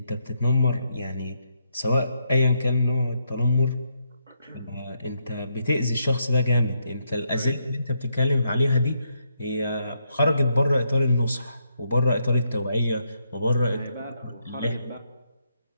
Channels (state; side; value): inverted; both; correlation -0.78